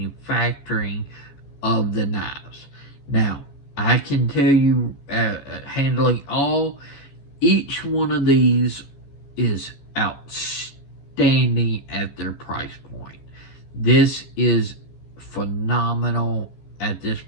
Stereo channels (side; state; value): right; late; 15 ms